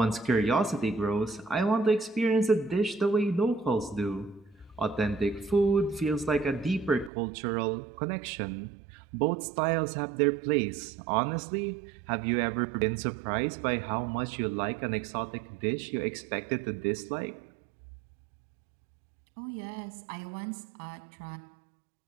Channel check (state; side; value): drops out; left; at 7.1 s